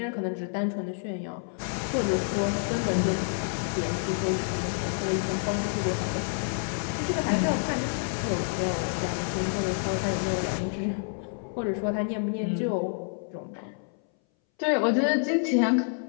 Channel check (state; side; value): silent; right; 59 dB below the other